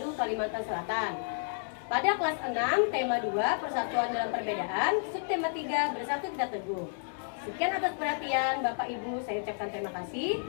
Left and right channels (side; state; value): right; silent; digital silence